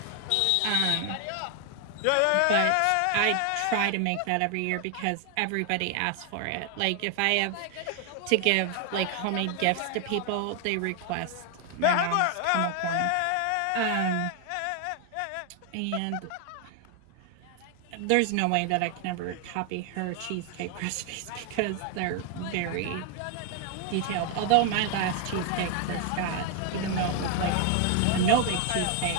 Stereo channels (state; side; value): different; both; correlation 0.00